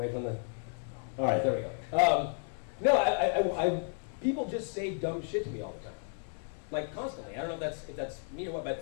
from the. All right, there we go. No, people just say dumb shit to me all the time, like constantly. I don't know if that's me or what,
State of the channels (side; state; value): right; silent; 56 dB below the other